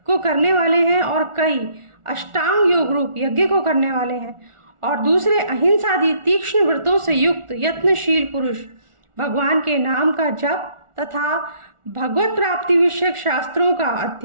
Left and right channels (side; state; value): left; late; 1.4 ms